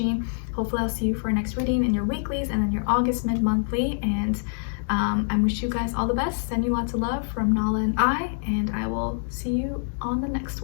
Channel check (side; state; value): right; silent; digital silence